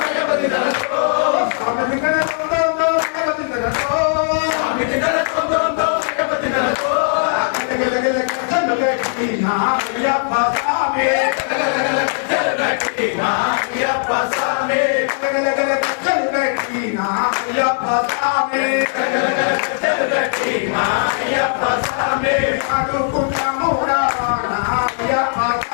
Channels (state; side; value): silent; right; digital silence